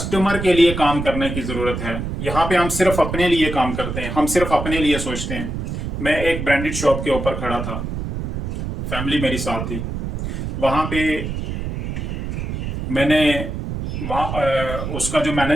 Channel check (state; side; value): noise; right; rumble, 4 dB below the sound